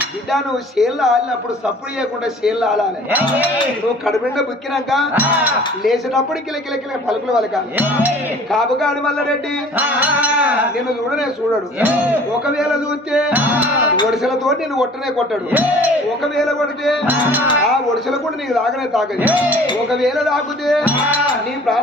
బిడ్డ నువ్వు షేర్లు ఆలినప్పుడు సప్పుడు చేయకుండా షేర్లు ఆలాలి నువ్వు కడుపుండ బుక్కినాక లేచేటప్పుడు కిలకిల పలుకులు వలకాలి కాపుగాడి మల్లారెడ్డి నిన్ను చూడనే చూడడు ఒకవేళ చూస్తే ఒడిసెలతో నేను కొట్టనే కొట్టాడు ఒకవేళ కొడితే ఆ ఒడిసెల కూడా నీకు తాగనే తాగదు ఒకవేళ తాగితే నీ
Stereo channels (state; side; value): normal; both; correlation 0.49